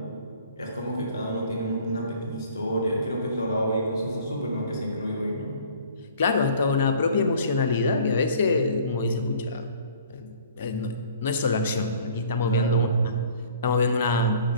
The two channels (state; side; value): inverted; both; correlation -0.52